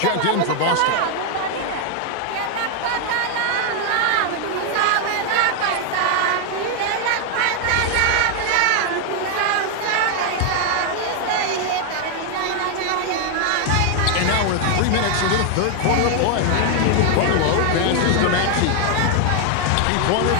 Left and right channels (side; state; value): both; different; correlation 0.00